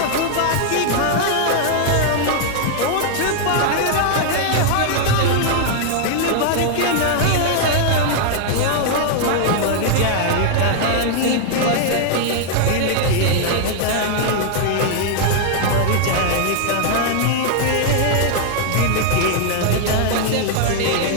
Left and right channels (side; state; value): both; different; correlation 0.00